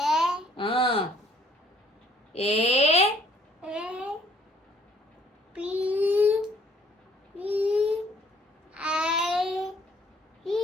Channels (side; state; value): both; normal; correlation 0.62